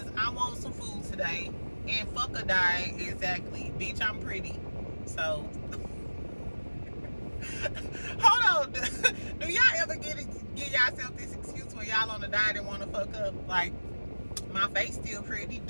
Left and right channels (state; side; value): inverted; both; correlation -1.00